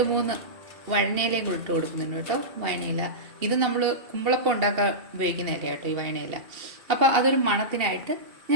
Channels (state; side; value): late; left; 2.7 ms